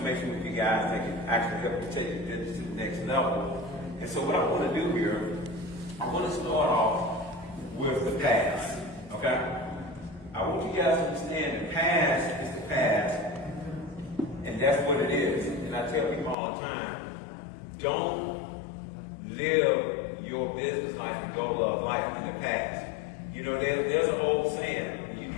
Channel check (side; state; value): right; drops out; at 16.4 s